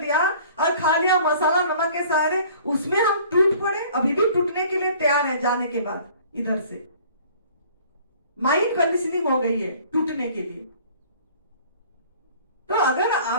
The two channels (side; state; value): both; inverted; correlation -0.51